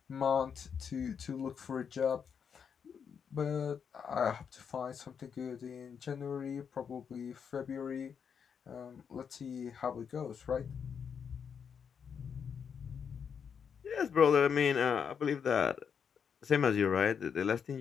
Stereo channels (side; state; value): right; quieter; 7.0 dB